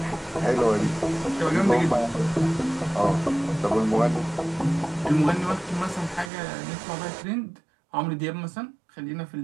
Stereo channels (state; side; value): drops out; left; at 6.3 s